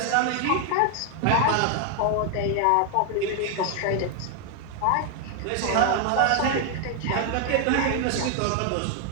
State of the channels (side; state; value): both; different; correlation 0.00